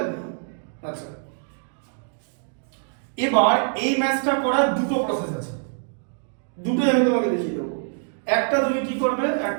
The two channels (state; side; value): silent; left; digital silence